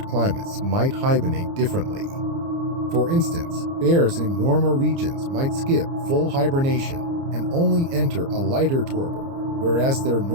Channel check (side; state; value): left; late; 30 ms